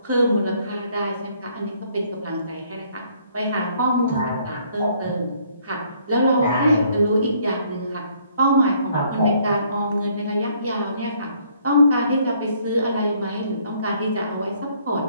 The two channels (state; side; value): inverted; both; correlation -0.65